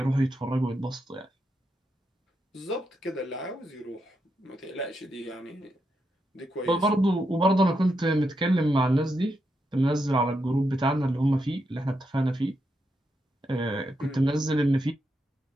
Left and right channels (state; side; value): normal; both; correlation 0.83